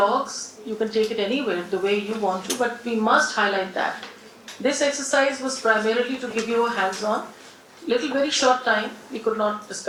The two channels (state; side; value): identical; both; correlation 1.00